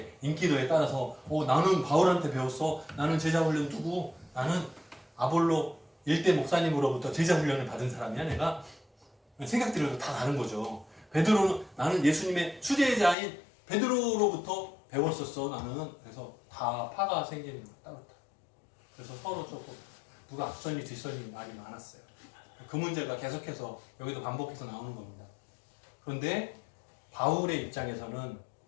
인기도에 따라서 나는 바울한테 배웠어. 나는 제자 훈련 두고 나는 아볼로 일대 목사님으로부터 제자 훈련을 받은 사람이야. 내가 생각들이 다 다른 거죠. 베드로는 나는 예수님의 수제자인 베드로로부터 배웠었어. 나는 그래서 다 파가 생기는 거 따로. 그래서 서로 조금 누가 앞선이 뒷선이 말이 많았어요. 그 문제가 계속해서 여기도 반복해서 나오는 겁니다. 그런데 바울의 입장에서는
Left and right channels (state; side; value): drops out; right; at 13.2 s